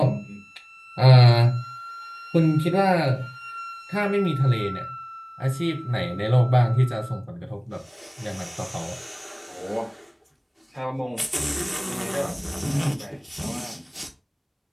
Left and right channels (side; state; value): both; identical; correlation 1.00